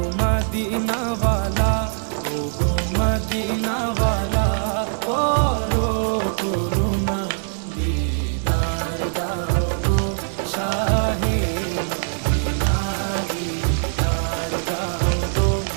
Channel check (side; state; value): left; silent; 64 dB below the other